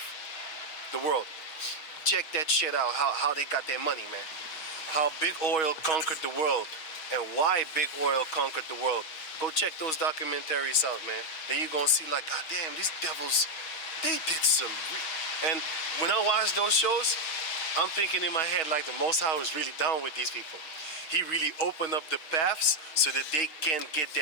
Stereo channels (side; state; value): right; late; 6.5 ms